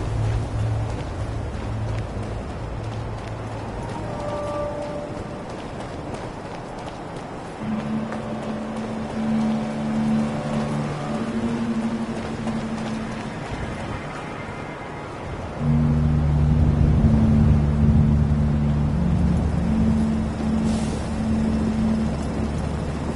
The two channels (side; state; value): both; identical; correlation 1.00